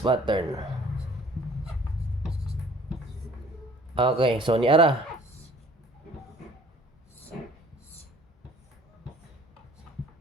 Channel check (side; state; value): both; normal; correlation 0.54